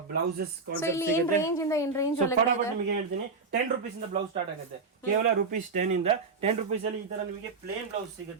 ಬ್ಲೌಸಸ್ ಇಲ್ಲಿ ಏನ್ ರೇಂಜ್ ಇಂದ ಏನ್ ರೇಂಜ್ ಒಳಗಡೆ ನಿಮಗೆ ಹೇಳ್ತೀನಿ 10 rupees ಇಂದ ಬ್ಲೌಸ್ ಸ್ಟಾರ್ಟ್ ಆಗುತ್ತೆ. ಕೇವಲ ₹10 ಇಂದ 10 rupees ಅಲ್ಲಿ ಈ ತರ ನಿಮಗೆ ಪ್ಲೇನ್ ಬ್ಲೌಸ್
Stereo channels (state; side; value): quieter; left; 4.3 dB